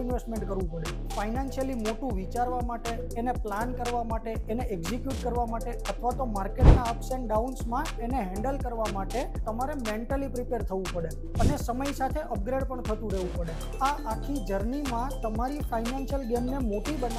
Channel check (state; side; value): identical; both; correlation 1.00